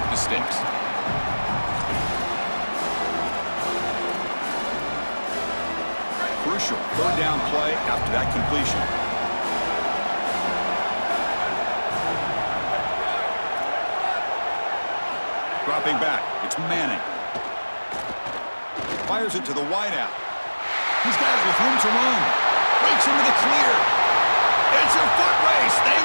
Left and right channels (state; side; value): inverted; both; correlation -1.00